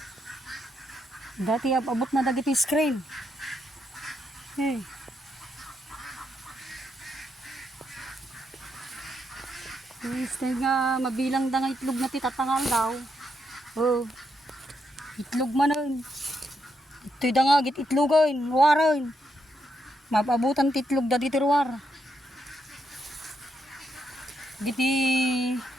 Dati abot na dagiti screen. Eh. Stay nga mabilang da nga itlog na titatangal daw. Oh. Itlog man nun. Ito'y da nga git itlogan, waran. Mapabutan titlog da diti ruwar. Giti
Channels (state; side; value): normal; both; correlation 0.80